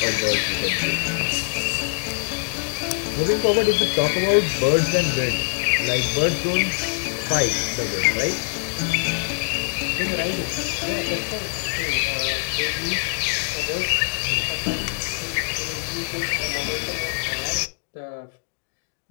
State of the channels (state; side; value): silent; right; digital silence